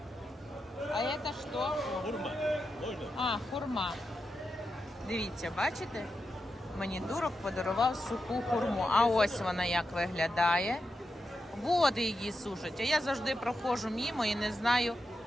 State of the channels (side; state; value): both; normal; correlation 0.88